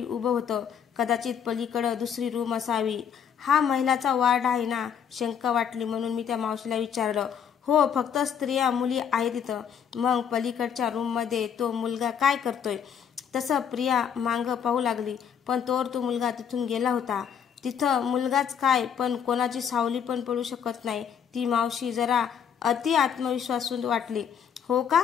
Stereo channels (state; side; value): quieter; right; 7.9 dB